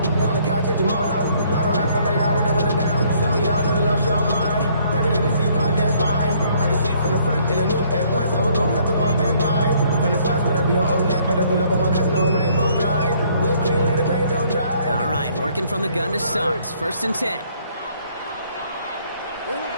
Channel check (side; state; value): both; inverted; correlation -0.64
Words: All right, working from the gun to start. 1st and 10.